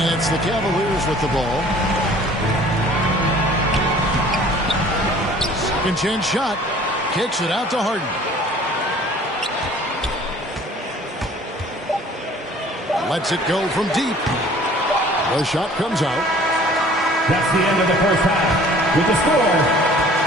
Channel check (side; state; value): both; normal; correlation 0.51